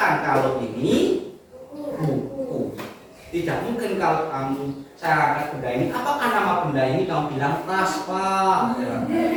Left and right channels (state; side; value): identical; both; correlation 1.00